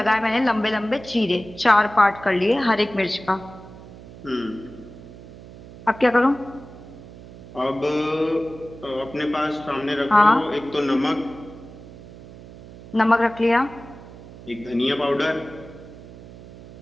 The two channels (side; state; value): right; noise; hum, 17 dB below the sound